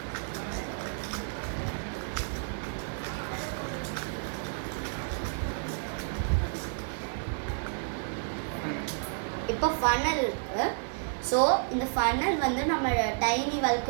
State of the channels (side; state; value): left; silent; 57 dB below the other